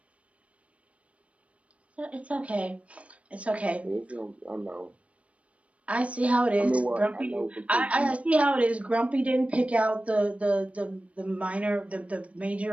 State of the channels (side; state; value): left; late; 0.064 ms